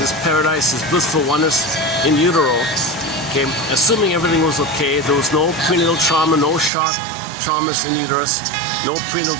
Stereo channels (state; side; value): drops out; left; at 6.7 s